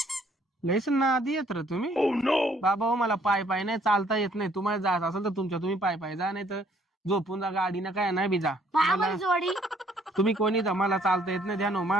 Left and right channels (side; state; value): both; normal; correlation 0.64